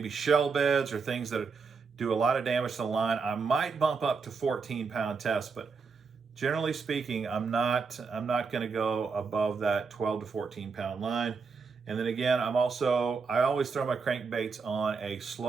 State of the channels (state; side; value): quieter; left; 5.0 dB